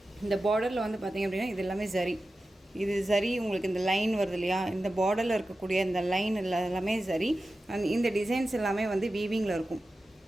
இந்த பார்டரில் வந்து பார்த்திங்க அப்படின்னா இது எல்லாமே ஜரி. இது சரி, உங்களுக்கு இந்த லைன் வருது இல்லையா, இந்த பார்டரில் இருக்கக்கூடிய இந்த லைன் எல்லாமே சரி. இந்த டிசைன்ஸ் எல்லாமே வந்து வீவிங்கில் இருக்கும்.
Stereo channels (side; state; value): both; normal; correlation 0.93